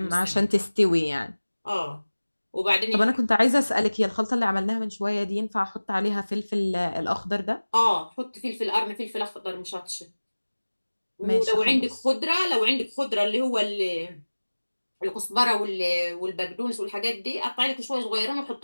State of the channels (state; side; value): inverted; both; correlation -1.00